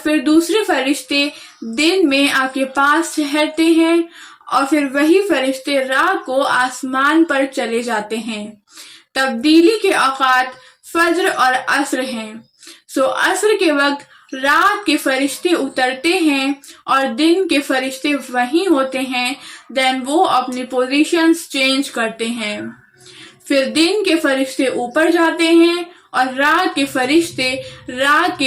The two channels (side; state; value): both; identical; correlation 1.00